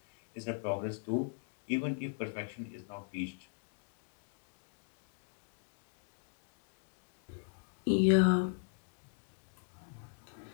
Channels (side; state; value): right; silent; digital silence